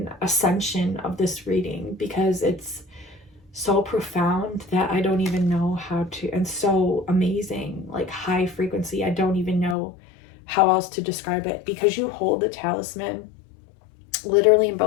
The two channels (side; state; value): right; drops out; at 9.8 s